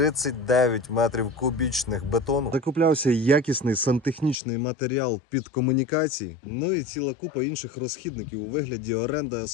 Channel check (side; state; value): right; drops out; at 4.4 s